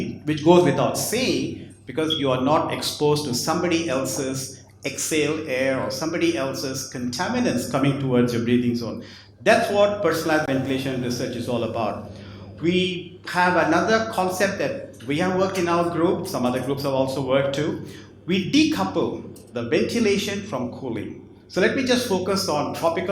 which goes without saying, because you are not exposed to somebody else's exhaled air or somebody else's contaminants coming towards your breathing zone. That's what personalized ventilation research is all about. We have another concept that we have worked in our group, some other groups have also worked too. We decouple the ventilation from cooling. So let me just focus on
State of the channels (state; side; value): identical; both; correlation 1.00